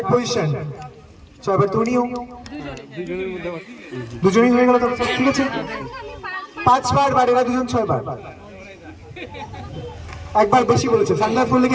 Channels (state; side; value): identical; both; correlation 1.00